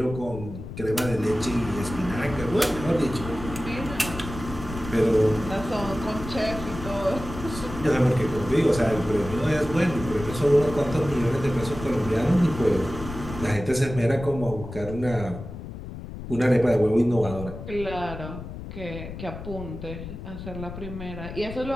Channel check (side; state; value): left; noise; rumble, 10 dB below the sound